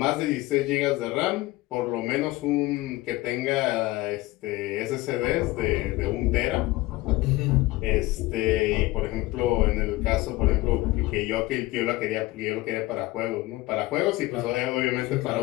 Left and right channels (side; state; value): right; quieter; 19.1 dB